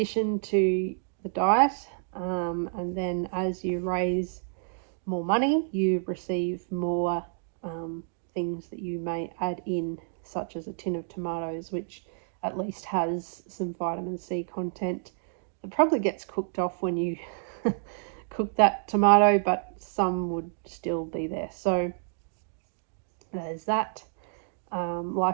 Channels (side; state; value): left; silent; digital silence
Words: to the diet, and then as you raise more money, you receive more things that you may add in, such as a tin of tomatoes, which at least has some vitamin C content that probably gets cooked off when you cook that tomato, but some would still be there. So there's that.